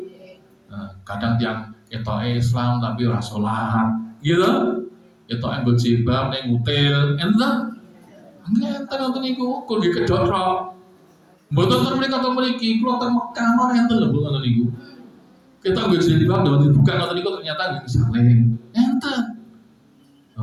Nah, kadang tiang itu Islam tapi ora sholat, gitu. Itu yang berjilbab, yang ngutil, entah. Entah nonton iku, kau di kedorok. Betul mereka atau meriki, keluar Mekah mana yang terlalu nonton iku. Kita berjilbab dan dibuka nonton iku ternyata gak saling, entah.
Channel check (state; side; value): identical; both; correlation 1.00